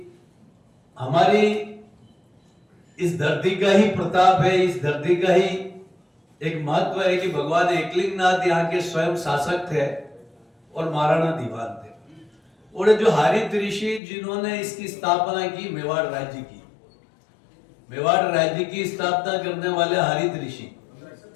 हमारी इस धरती का ही प्रताप है, इस धरती का ही एक महत्व है कि भगवान एकलिंगनाथ यहाँ के स्वयं शासक थे और महाराणा दीवान थे। और जो हरित ऋषि जिन्होंने इसकी स्थापना की, मेवाड़ राज्य की, मेवाड़ राज्य की स्थापना करने वाले हरित ऋषि,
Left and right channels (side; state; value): right; drops out; at 14.0 s